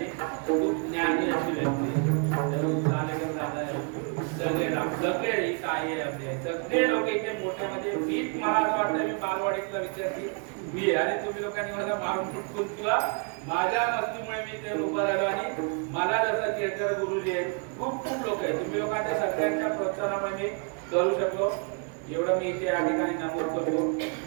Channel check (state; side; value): quieter; left; 36.0 dB